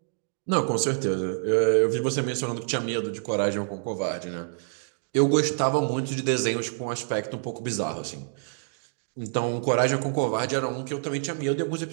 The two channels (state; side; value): silent; left; digital silence